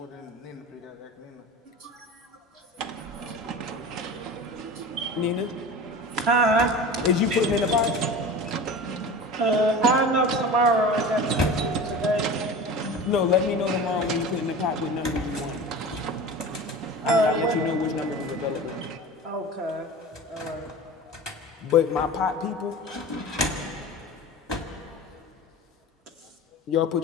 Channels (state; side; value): normal; both; correlation 0.34